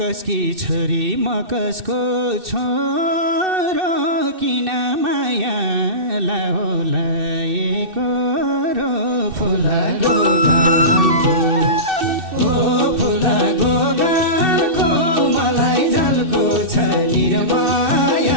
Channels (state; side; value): late; left; 2.6 ms